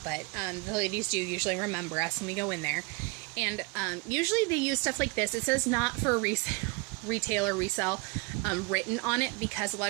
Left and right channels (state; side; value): quieter; left; 28.8 dB